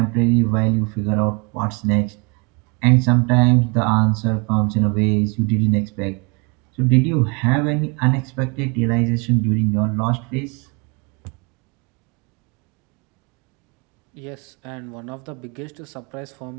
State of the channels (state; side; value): quieter; left; 30.9 dB